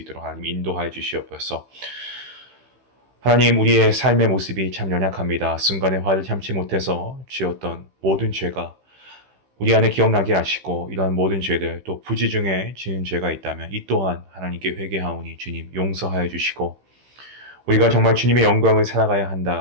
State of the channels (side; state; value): left; late; 15 ms